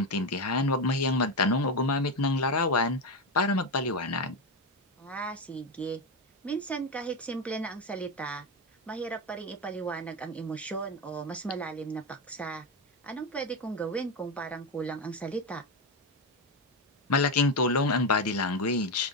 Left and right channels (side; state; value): both; normal; correlation 0.13